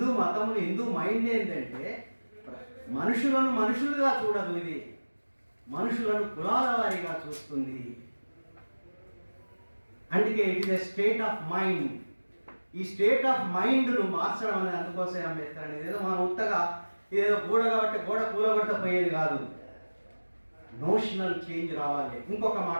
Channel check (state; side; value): inverted; both; correlation -1.00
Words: మతంలో హిందూ మైండ్ ఏంటంటే మనుషులను మనుషులుగా చూడదు, ఇది మనుషులను కులాల వారీగా చూస్తుంది. అందుకే it is a state of mind. ఈ స్టేట్ ఆఫ్ మైండ్ను మార్చడం అనేది అందుకోసమే అంబేద్కర్ అనేది. ఏదో మనం ఉత్తగా ఏదో గోడ కాబట్టి గోడ కూలగొట్టపోయేది కాదు, నోషనల్ చేంజ్ రావాలి. ఇంకొక